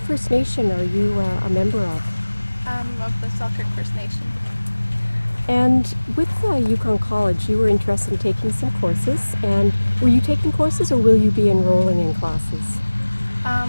Nation are you a member of? Of the Selkirk First Nation. And with Yukon College, you were interested in taking some courses. And were you taking courses, or will you be enrolling in classes? I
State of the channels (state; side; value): inverted; both; correlation -1.00